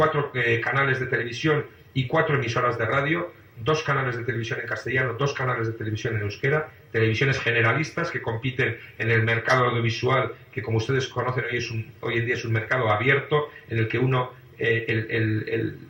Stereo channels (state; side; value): identical; both; correlation 1.00